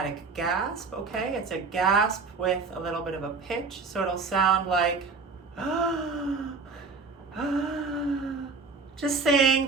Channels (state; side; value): quieter; left; 4.4 dB